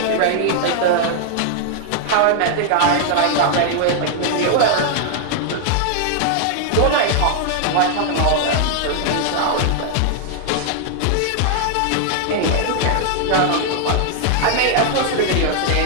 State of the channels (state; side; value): different; both; correlation 0.00